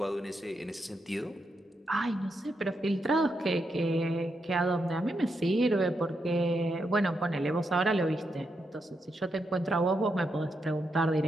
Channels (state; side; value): normal; both; correlation 0.83